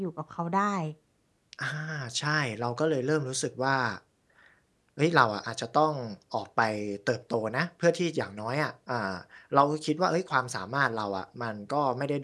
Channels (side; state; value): both; identical; correlation 1.00